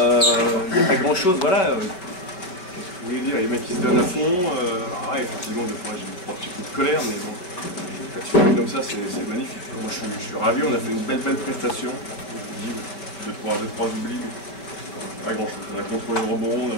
Il n'y a pas grand-chose, voilà. Vous voulez dire, les mecs qui se donnent à fond, effectivement, des fois j'ai 3 petits coups de colère, mais bon, quand tu fais comme ça, c'est magnifique. Moi je suis ravi, on a fait une belle prestation. Je dis, 2-3 oublis, mais pas grand chose. On a contrôlé le rebond, on a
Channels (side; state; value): right; late; 5.3 ms